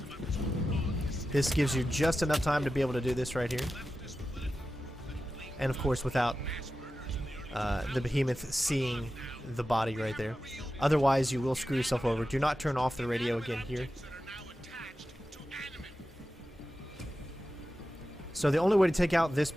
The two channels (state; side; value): normal; both; correlation 0.93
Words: about this whole law. This gives you just enough time to be able to do this right here. And of course without the behemoth seeing the body right there. Otherwise, you will screw yourself over. Do not turn off the radio again here. So the only way to take out this